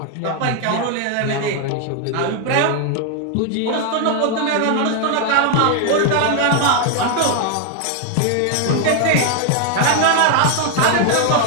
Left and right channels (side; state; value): both; different; correlation 0.00